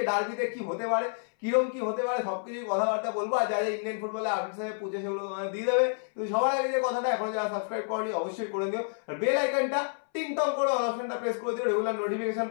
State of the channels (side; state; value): right; silent; 58 dB below the other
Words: ডার্বিতে কি হতে পারে, কিরকম কি হতে পারে, সবকিছু কথাবার্তা বলবো। আর যা যা ইন্ডিয়ান ফুটবলে আপডেটস আছে পুজো, সেগুলো তোমাদের দিয়ে দেবে। তো সবার আগে যে কথাটা, এখন যারা সাবস্ক্রাইব করনি অবশ্যই করে দিও, আর বেল আইকনটা টিং টং করে অল অপশনটা প্রেস করে দিও রেগুলার নোটিফিকেশন